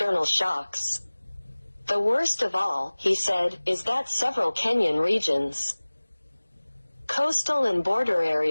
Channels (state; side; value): inverted; both; correlation -1.00